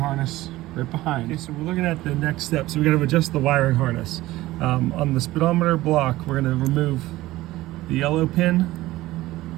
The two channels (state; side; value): quieter; left; 17.2 dB